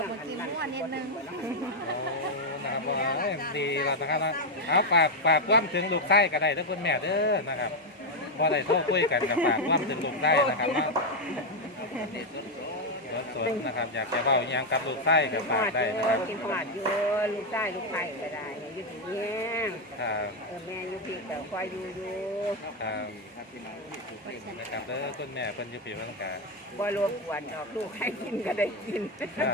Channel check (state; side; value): normal; both; correlation 0.04